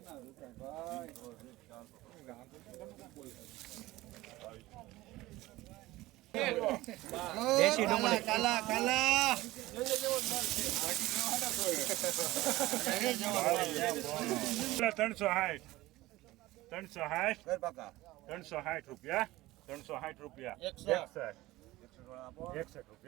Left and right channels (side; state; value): left; quieter; 18.2 dB